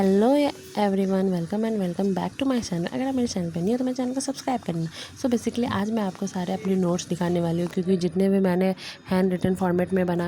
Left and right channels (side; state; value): both; identical; correlation 1.00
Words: everyone, welcome and welcome back to my channel. अगर आप मेरे चैनल पर नहीं हो तो मेरे चैनल को सब्सक्राइब करना। सो बेसिकली आज मैं आपको सारे अपने नोट्स दिखाने वाली हूँ, क्योंकि जितने भी मैंने हैंड रिटन फॉर्मेट में